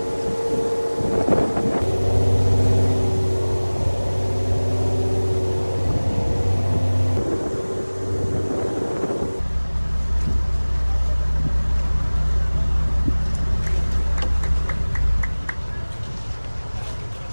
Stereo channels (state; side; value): inverted; both; correlation -1.00